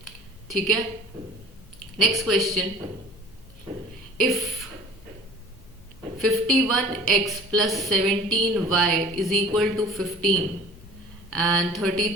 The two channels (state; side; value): noise; left; hum, 24 dB below the sound